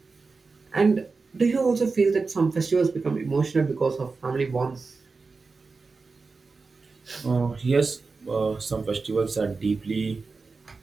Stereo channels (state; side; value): quieter; left; 4.3 dB